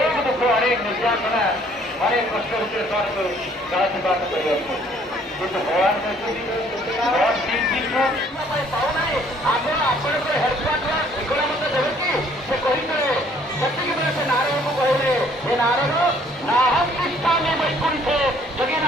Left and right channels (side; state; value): both; normal; correlation 0.60